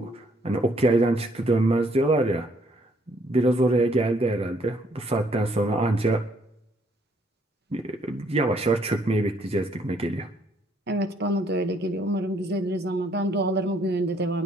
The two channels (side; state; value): both; normal; correlation 0.67